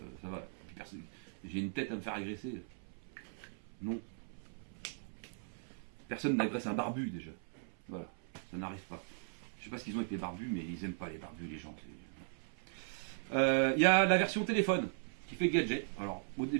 ça va. J'ai une tête à me faire agresser. Non. Personne n'agresse un barbu déjà. Voilà, ça n'arrive pas. Je sais pas ce qu'ils ont avec les barbus, mais ils aiment pas les barbus, les gens. Il y a la version téléphone qui fait gadget. Alors, au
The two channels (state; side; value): silent; left; 52 dB below the other